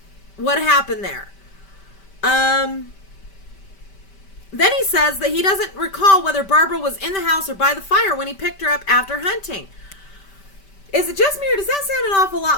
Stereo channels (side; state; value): right; late; 5.1 ms